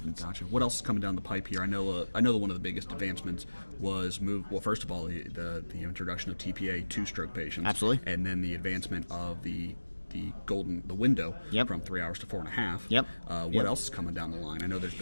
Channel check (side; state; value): both; inverted; correlation -1.00